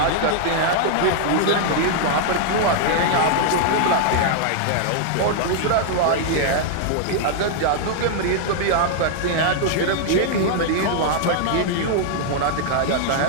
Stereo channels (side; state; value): both; different; correlation -0.01